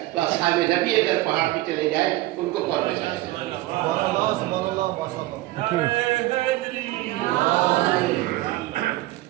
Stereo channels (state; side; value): quieter; left; 17.5 dB